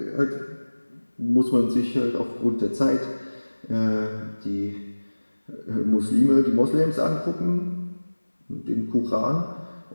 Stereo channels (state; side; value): inverted; both; correlation -1.00